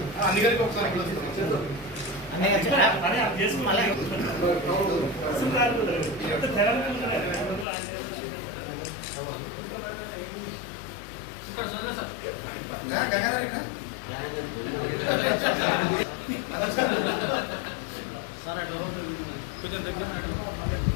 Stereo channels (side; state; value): right; drops out; at 7.7 s